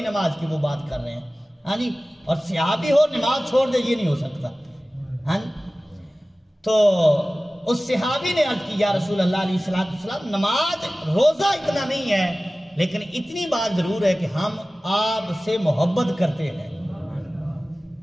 نماز کی وہ بات کر رہے ہیں۔ ہاں جی، اور صحابی ہو نماز چھوڑ دے یہ نہیں ہو سکتا۔ ہاں جی، تو اس صحابی نے عرض کی یا رسول اللہ علیہ السلام نماز روزہ اتنا نہیں ہے، لیکن اتنی بات ضرور ہے کہ ہم آپ سے محبت کرتے ہیں۔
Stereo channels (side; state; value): both; normal; correlation 0.97